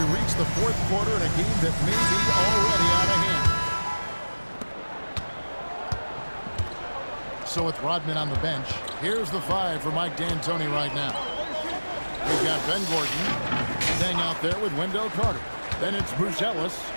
reach the fourth quarter in a game that may be already out of hand. So with Rodman on the bench, here's the five for Mike D'Antoni right now. We've got Ben Gordon staying out there with Wendell Carter. Then it's Bruce Ellis,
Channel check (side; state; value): both; inverted; correlation -1.00